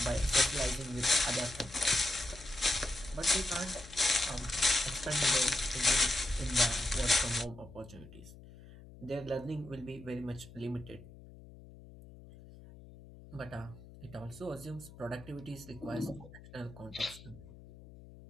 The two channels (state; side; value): noise; left; hum, 18 dB below the sound